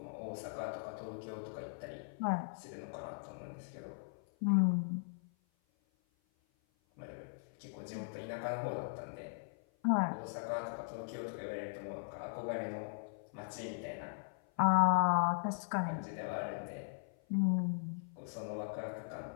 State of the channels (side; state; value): right; silent; 52 dB below the other